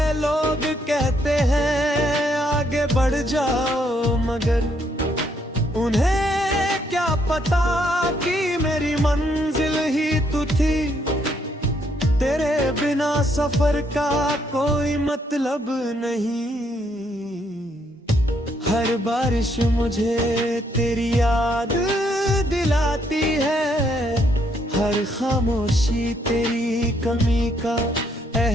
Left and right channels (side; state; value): both; normal; correlation 0.72